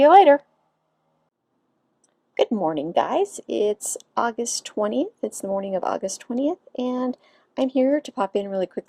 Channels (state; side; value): identical; both; correlation 1.00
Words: later. Good morning, guys. It's August 20th. It's the morning of August 20th, and I'm here to pop in really